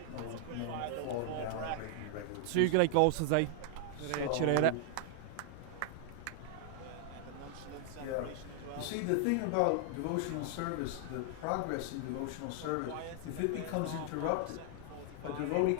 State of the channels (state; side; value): different; both; correlation 0.00